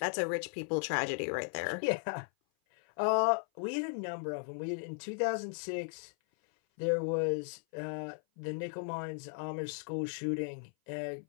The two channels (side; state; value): right; silent; 54 dB below the other